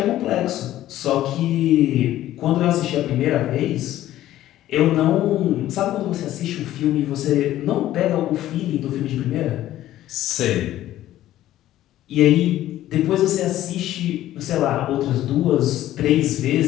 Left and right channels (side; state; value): right; quieter; 13.7 dB